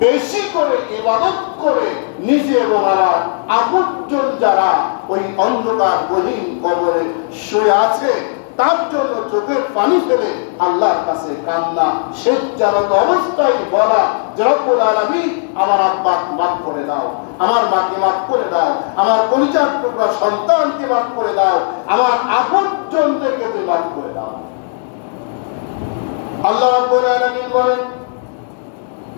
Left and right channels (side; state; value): right; silent; 69 dB below the other